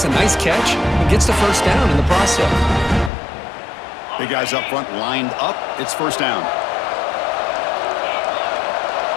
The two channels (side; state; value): right; drops out; at 3.1 s